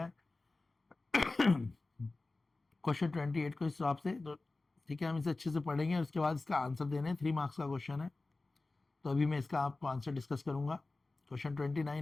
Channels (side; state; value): right; quieter; 3.3 dB